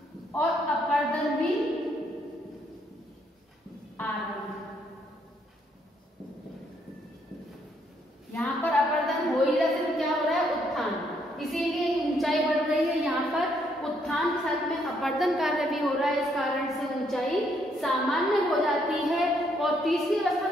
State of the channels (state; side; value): normal; both; correlation 0.72